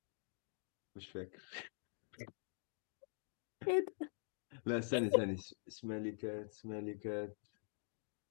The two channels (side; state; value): right; silent; digital silence